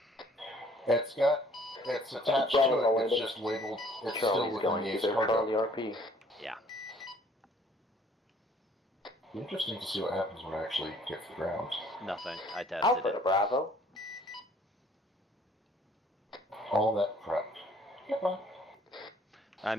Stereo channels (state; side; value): normal; both; correlation 0.58